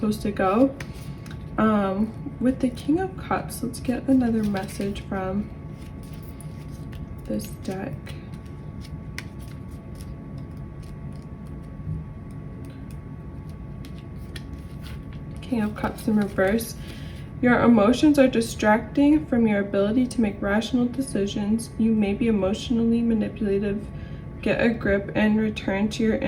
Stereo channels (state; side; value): identical; both; correlation 1.00